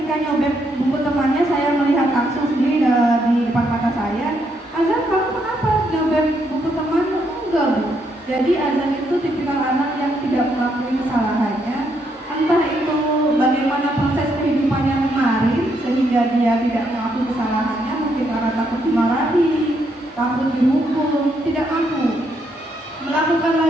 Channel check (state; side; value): normal; both; correlation 0.76